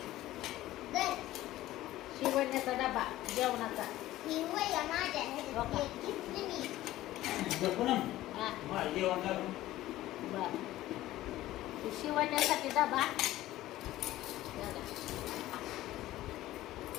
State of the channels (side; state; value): right; quieter; 15.4 dB